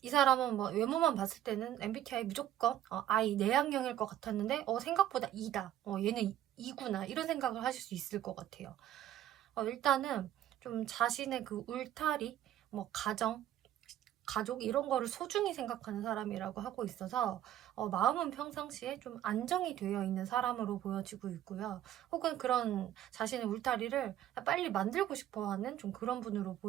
이 사람은 뭐 외모만 봤을 때는 MBTI 무조건 I 내향형일 것 같았는데 생각보다 E다. 얘는 E구나. 이런 생각을 하실 수 있을 것 같아요. 일단은 좀 자신의 그 울타리, 뭐 가족 이런 거를 소중히 생각하는 사람이라고 하고 있어서 마음은 평상시에 좀 안정이 되어 있는 사람으로 보여지고 있고요. 혹은 그런 자신의 울타리를 빨리 만들고 싶어 하는 좀 그런 분으로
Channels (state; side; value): quieter; left; 12.0 dB